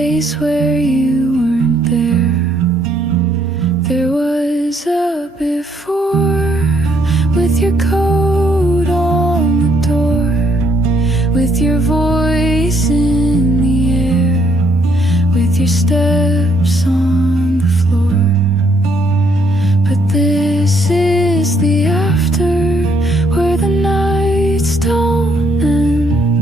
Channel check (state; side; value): normal; both; correlation 0.70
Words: where you weren't there. There was a before with your coat on the door, with your voice in the air, with your steps on the floor. But this is the after, where the nights don't